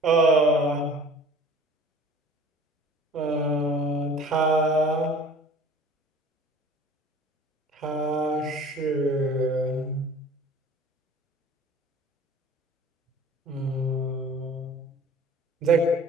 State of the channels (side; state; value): both; normal; correlation 0.46